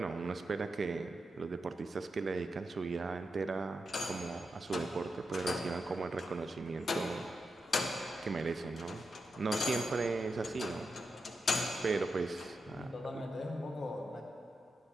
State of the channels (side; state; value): both; normal; correlation 0.87